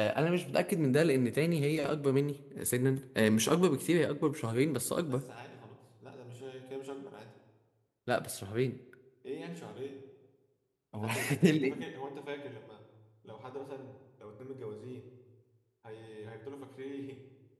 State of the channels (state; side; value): identical; both; correlation 1.00